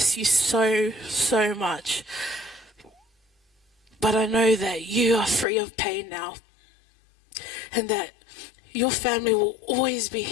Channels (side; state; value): right; drops out; at 5.5 s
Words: you so, so much. But I know that you are free of pain now, and that your family will always be